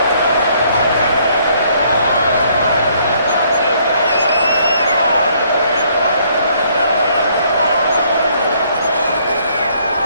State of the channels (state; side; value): inverted; both; correlation -0.65